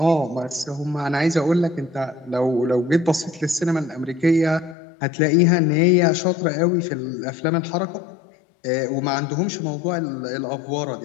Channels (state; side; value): drops out; right; at 4.8 s